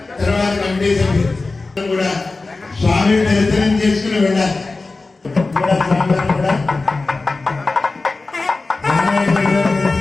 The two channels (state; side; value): quieter; right; 3.6 dB